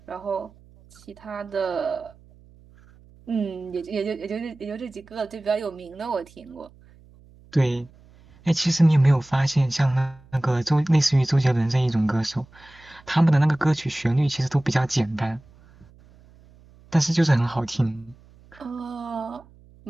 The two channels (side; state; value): right; noise; hum, 26 dB below the sound